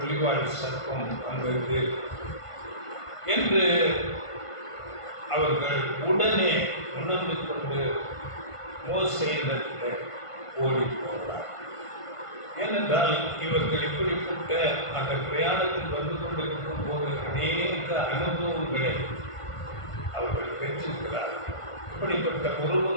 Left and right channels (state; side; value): late; right; 1.5 ms